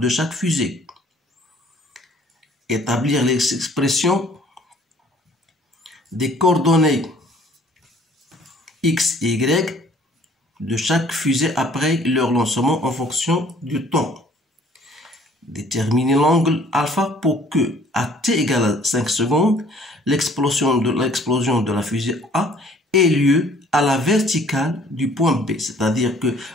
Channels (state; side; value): normal; both; correlation 0.56